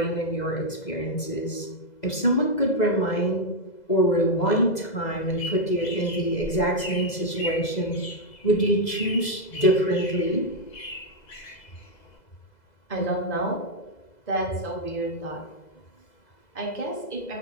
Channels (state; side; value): late; right; 2.0 ms